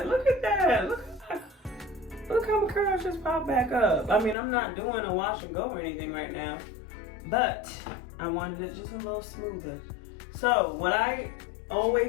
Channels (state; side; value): drops out; right; at 4.4 s